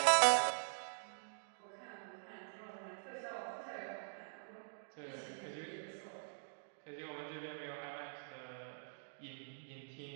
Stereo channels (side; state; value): left; silent; digital silence